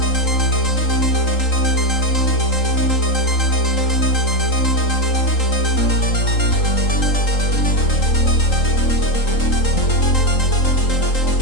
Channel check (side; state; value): right; late; 3.8 ms